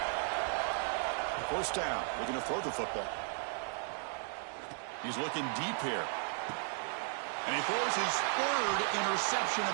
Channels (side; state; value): left; silent; 54 dB below the other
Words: First down. Looking to throw the football. He's looking deep here. And he throws his third interception